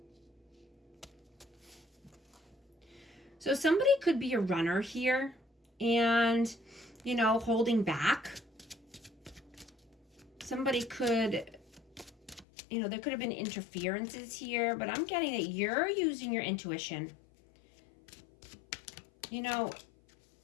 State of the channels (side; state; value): right; drops out; at 12.5 s